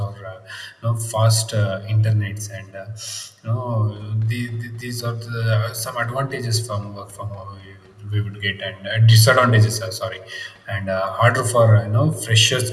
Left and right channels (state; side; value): identical; both; correlation 1.00